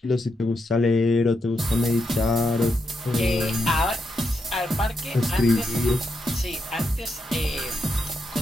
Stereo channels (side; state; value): both; normal; correlation 0.83